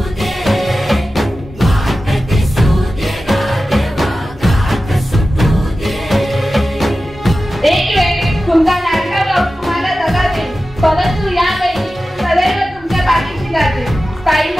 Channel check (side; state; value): both; normal; correlation 0.94